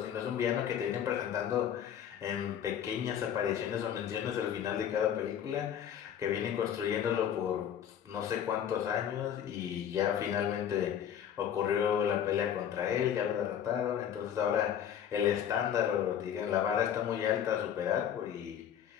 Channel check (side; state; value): right; quieter; 9.4 dB